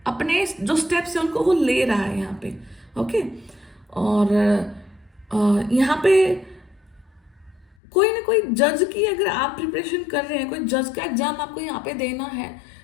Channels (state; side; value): drops out; right; at 7.8 s